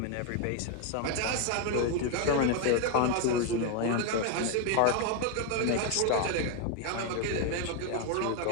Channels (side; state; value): both; different; correlation 0.01